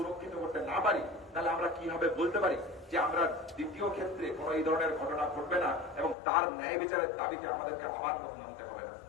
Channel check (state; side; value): drops out; right; at 6.2 s